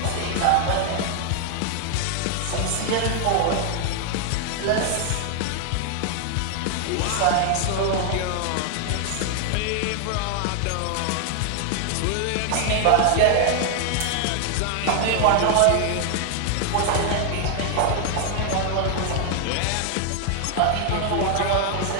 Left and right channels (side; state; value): both; different; correlation 0.00